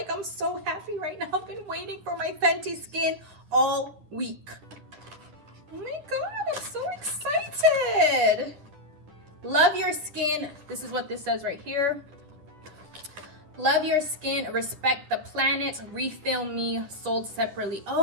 I'm so happy right now. I've been waiting for my Fenty Skin all week. Oh my God, I'm so excited. Love your skin. This is what this says right here. Love your skin, respect the planet, refill me, sold separately.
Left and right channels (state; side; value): late; left; 10 ms